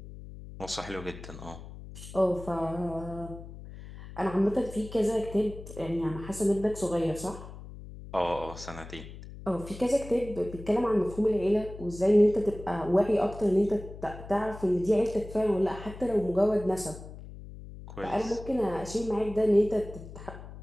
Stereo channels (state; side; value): noise; left; hum, 14 dB below the sound